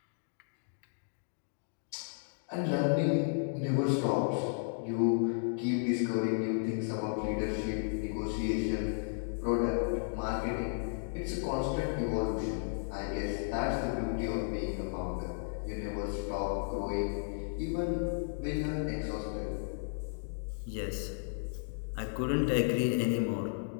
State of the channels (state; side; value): silent; right; digital silence